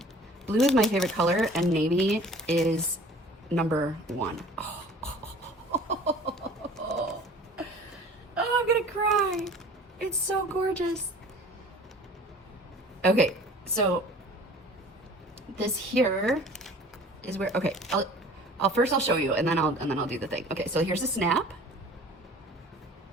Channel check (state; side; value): normal; both; correlation 0.46